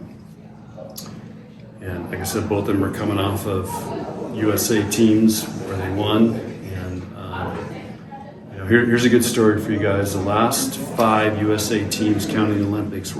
like I said, both of them are coming off of USA teams where they won. And here's a good story for you guys. The last 5 USA teams, counting the Olympics,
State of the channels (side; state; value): both; identical; correlation 1.00